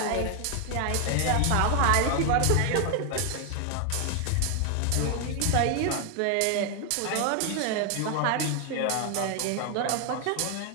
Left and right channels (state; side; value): different; both; correlation 0.00